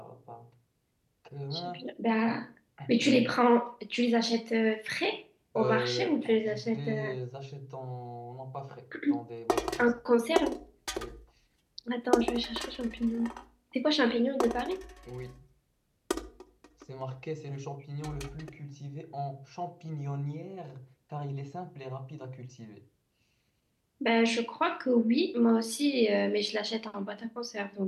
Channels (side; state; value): both; identical; correlation 1.00